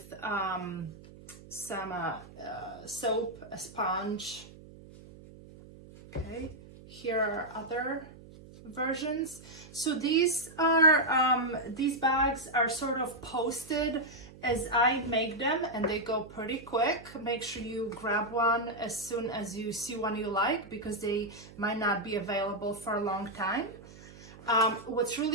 some soap, a sponge. Okay, here are other versions. So these bags are sort of posted as I make them, and they go pretty quick. Make sure you grab one as soon as you see one you like, because they might not be available for a long time. What's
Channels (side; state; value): right; noise; hum, 19 dB below the sound